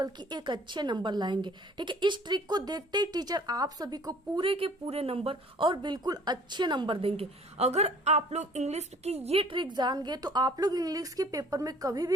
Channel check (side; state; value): both; normal; correlation 0.53